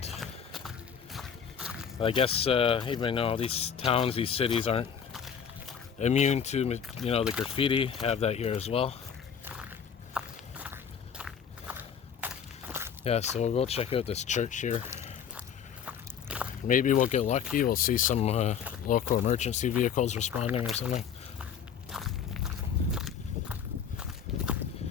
I guess even though these towns, these cities aren't immune to, you know, the graffiti, have that here as well. Yeah, so we'll go check out this church here. Maybe we'll get lucky. We'll see some local emergency vehicles responding or something.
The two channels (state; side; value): quieter; right; 7.6 dB